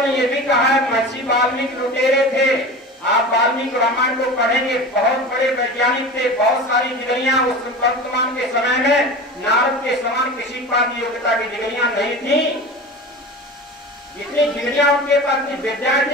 ने ये भी कहा है महर्षि वाल्मीकि लुटेरे थे, आप वाल्मीकि रामायण को पढ़ेंगे, बहुत बड़े वैज्ञानिक थे, बहुत सारी डिग्रियां उस वर्तमान के समय में नारद के समान किसी के पास योग्यता की डिग्रियां नहीं थी। इतनी डिग्रियां उनके पास थी, विद्याएं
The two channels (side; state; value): both; normal; correlation 0.32